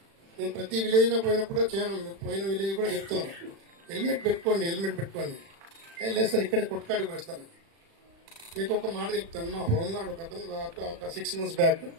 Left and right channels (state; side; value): late; left; 36 ms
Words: నేను ప్రతి విలేజ్ లో పోయినప్పుడు పోయిన విలేజ్ కూడా చెప్తున్నాను, హెల్మెట్ పెట్టుకోండి. లేదు సార్ ఇక్కడే కొట్టుకాడికి వేస్తాను. మీకు ఒక మాట చెప్తాను, మా హోంగార్డ్ ఒక 6 months బ్యాక్